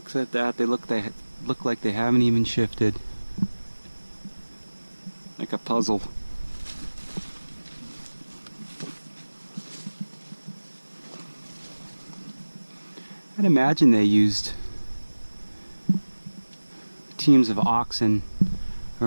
at that, they look like they haven't even shifted. Like a puzzle. I'd imagine they used teams of oxen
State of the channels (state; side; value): inverted; both; correlation -1.00